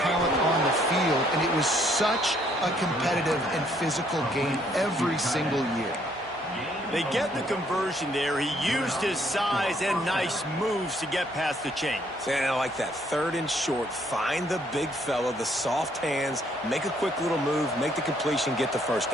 talent on the field, and it was such a competitive and physical game every single year. They get the conversion there. He used his size and nice moves to get past the chains. And I like that. Third and short, find the big fella, the soft hands, make a quick little move, make the completion, get the first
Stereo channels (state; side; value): normal; both; correlation 0.67